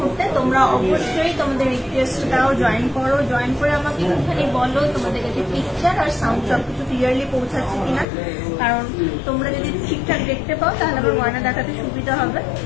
তোমরা অবশ্যই তোমাদের রিকোয়েস্টটাও জয়েন করো। জয়েন করে আমাকে একটুখানি বলো তোমাদের কাছে পিকচার আর সাউন্ড সব কিছু ক্লিয়ারলি পৌঁছাচ্ছে কিনা, কারণ তোমরা যদি ঠিকঠাক দেখতে পাও তাহলে আমার গয়না দেখাতে সুবিধা হবে।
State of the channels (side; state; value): right; drops out; at 8.1 s